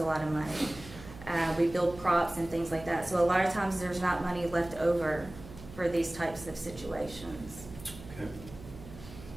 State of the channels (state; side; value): noise; right; hum, 16 dB below the sound